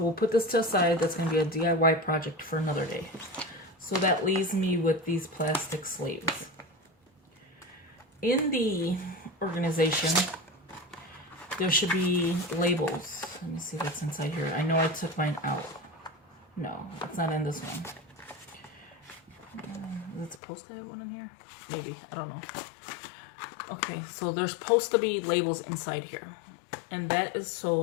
we'll put this to the side. That's going to be a DIY project for another day. So that leaves me with these plastic sleeves. In the organization, there should be labels. Let me see what's inside here. I know I took mine out. No, it's not in this one. Is it supposed to have one in here? Maybe, I don't know. Okay, so there's supposed to be labels inside here. And that is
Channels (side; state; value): right; drops out; at 20.4 s